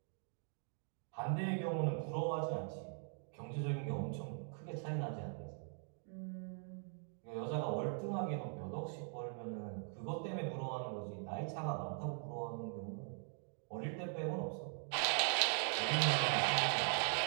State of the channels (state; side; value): silent; left; 50 dB below the other